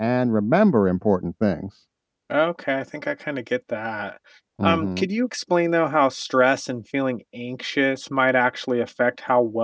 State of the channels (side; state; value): both; identical; correlation 1.00